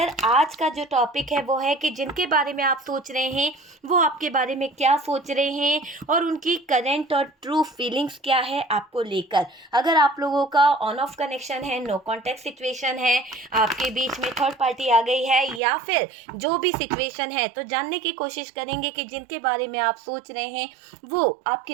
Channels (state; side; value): drops out; left; at 15.6 s